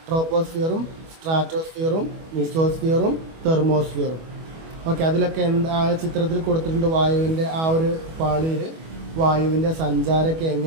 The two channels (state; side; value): late; left; 25 ms